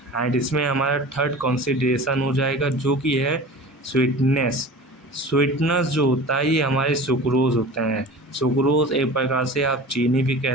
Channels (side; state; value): both; normal; correlation 0.37